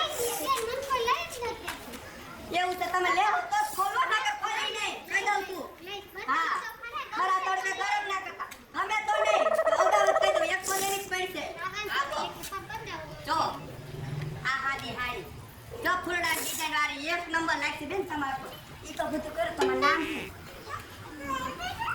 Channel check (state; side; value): identical; both; correlation 1.00